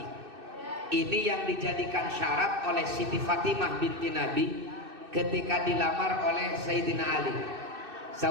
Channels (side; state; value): left; late; 2.6 ms